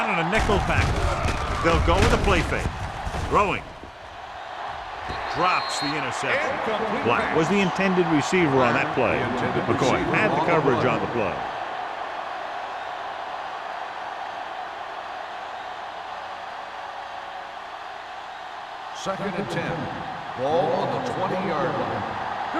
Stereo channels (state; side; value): identical; both; correlation 1.00